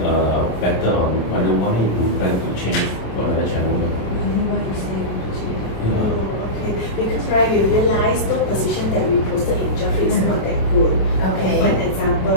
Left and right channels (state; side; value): late; right; 26 ms